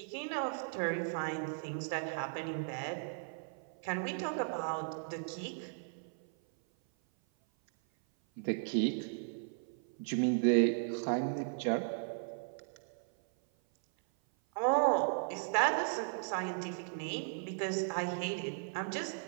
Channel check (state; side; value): silent; left; 53 dB below the other